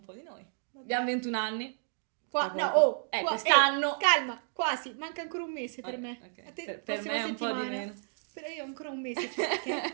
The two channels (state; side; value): silent; left; digital silence